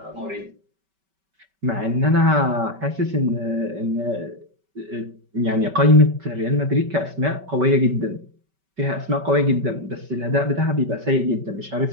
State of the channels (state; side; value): late; left; 5.2 ms